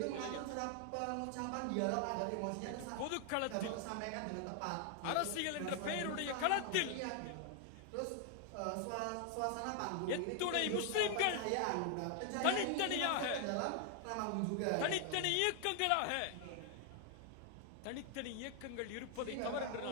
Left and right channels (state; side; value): different; both; correlation 0.00